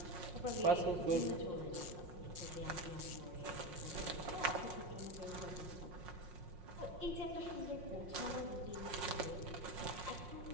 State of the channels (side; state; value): left; late; 5.6 ms